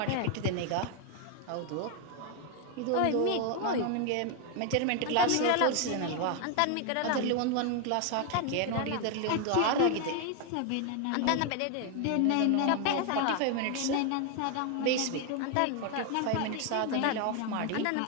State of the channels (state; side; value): different; both; correlation 0.01